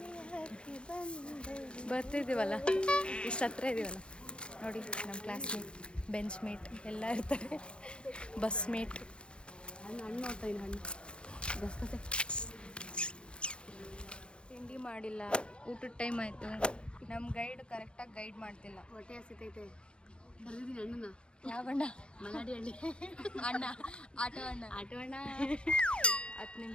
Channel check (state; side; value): late; right; 0.055 ms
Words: ಬರ್ತಿದ್ದೀವಲ್ಲ, ಇಷ್ಟು ಹತ್ರ ಇದ್ದೀವಲ್ಲ ನೋಡಿ. ನಮ್ಮ ಕ್ಲಾಸ್ಮೇಟ್, ಬೆಂಚ್ ಮೇಟ್ ಎಲ್ಲ ಇರ್ತಾರೆ. Bus mate. ಹಣ್ಣು ನೋಡ್ತಾ ಇದ್ದೀನಿ, ಹಣ್ಣು ಬಸ್ಕತೆ. ತಿಂಡಿ ಮಾಡಿಲ್ಲ, ಊಟದ ಟೈಮ್ ಆಯಿತು. ನಮ್ಮ ಗೈಡ್ ಕರೆಕ್ಟಾಗಿ ಗೈಡ್ ಮಾಡ್ತಿಲ್ಲ. ಹೊಟ್ಟೆ ಹಸಿತೈತೆ. ಕರೆದಿದ್ದೀನಿ ಹಣ್ಣನ್ನ. ಯಾವ ಅಣ್ಣ? ಮಲಾಡಿ ಹಣ್ಣಿ ಅಣ್ಣ, ಆಟೋ ಅಣ್ಣ. 10